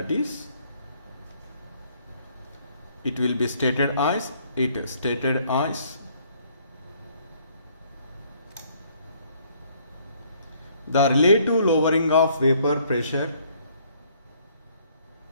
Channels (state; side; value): inverted; both; correlation -0.63